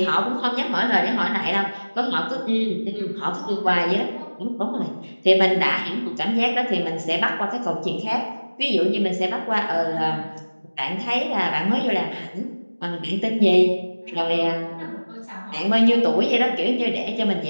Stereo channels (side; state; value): both; inverted; correlation -1.00